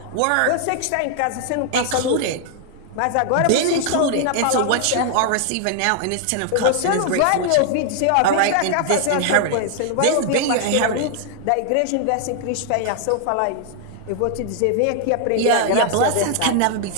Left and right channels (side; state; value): both; different; correlation 0.00